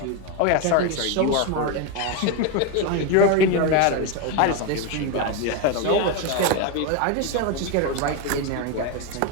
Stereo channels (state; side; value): different; both; correlation 0.03